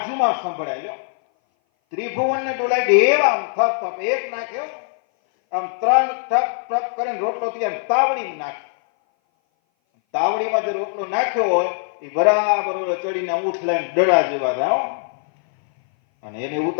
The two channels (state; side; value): silent; right; 58 dB below the other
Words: સંભળાય. ત્રિભુવન ને ડોલાય દેવા આમ થપ થપ એક નાખ્યો, આમ 3 ટપ ટપ કરીને રોટલો તૈયાર. તાવડીમાં નાખે, તાવડીમાં જે રોટલો નાખ્યો હોય એ બરાબર ચડીને ઊઠ લઈને ડડા જેવા થાય. અને એને